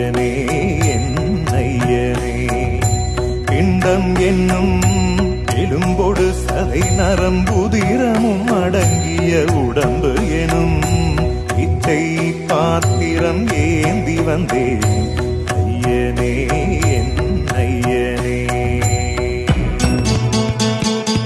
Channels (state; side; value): identical; both; correlation 1.00